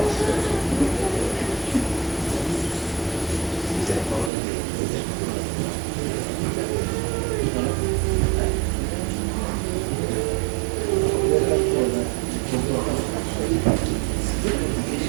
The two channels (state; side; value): drops out; left; at 4.3 s